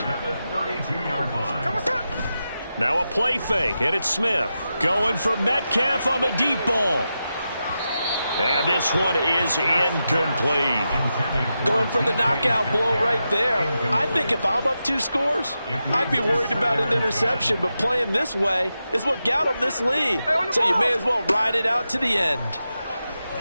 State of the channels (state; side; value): inverted; both; correlation -0.89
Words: Now a play fake, and it's Smith going for Metcalf on the deep ball. And this one is incomplete. Going for the knockout blow right there. I think if I'm up 2 scores, I'd be worried about an interception, but playing this way is what got them this lead. So you may as well ride it out to the end.